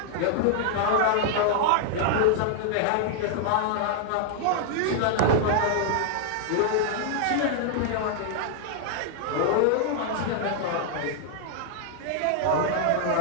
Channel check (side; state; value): both; different; correlation 0.00